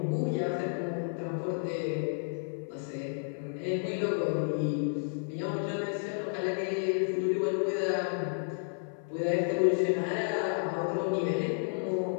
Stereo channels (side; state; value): right; silent; 57 dB below the other